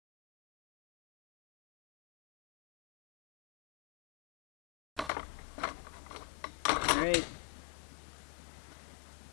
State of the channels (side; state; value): right; drops out; at 5.1 s